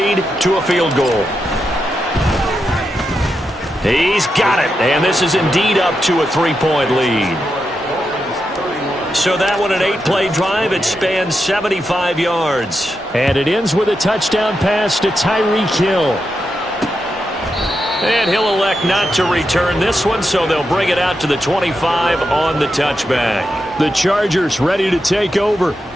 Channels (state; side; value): normal; both; correlation 0.86